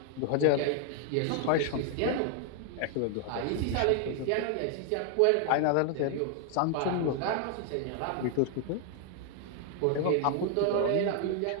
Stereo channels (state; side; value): different; both; correlation 0.00